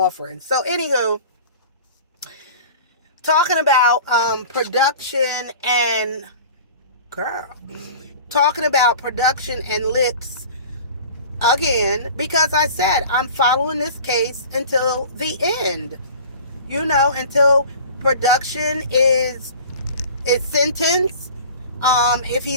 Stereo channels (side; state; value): both; inverted; correlation -0.41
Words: So anywho, talking about production and Llips again, because I said I'm following this case until the end. You know, until production is sentenced. If